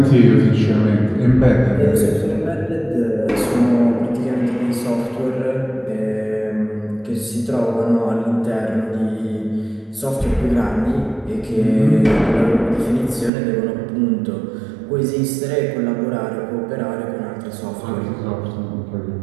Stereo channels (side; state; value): left; drops out; at 13.3 s